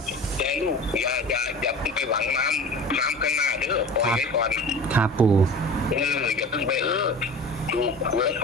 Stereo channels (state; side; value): normal; both; correlation 0.37